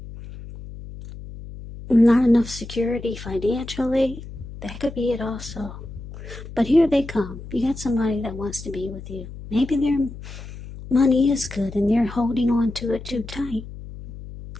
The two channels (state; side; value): noise; left; hum, 13 dB below the sound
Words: not enough security financially. That could be it also. But here they come. You got somebody that wants to be with you. Maybe their money is good and they're holding on to it too tight.